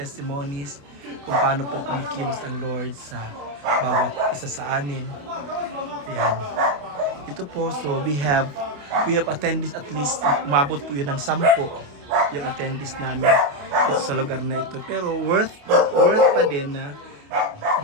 kung paano po kumikilos ang Lord sa bawat isa sa amin. Ayan. Ito po, so we have attended at least, umabot po yun ng 10 yung attendees namin ito sa lugar na ito. Pero worth pa din na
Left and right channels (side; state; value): left; late; 28 ms